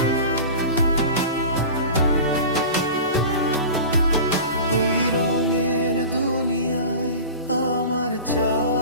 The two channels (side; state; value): both; inverted; correlation -0.34